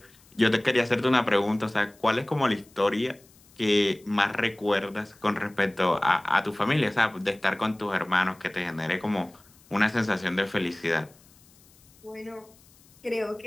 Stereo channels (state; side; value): noise; left; hiss, 28 dB below the sound